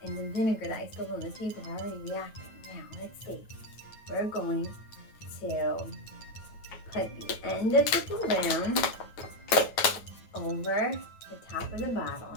and the vinegar that I spilled on the table are already reacting. Now, let's see. We're going to put the end of the balloon over the top of the bottle,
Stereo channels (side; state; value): right; late; 9.1 ms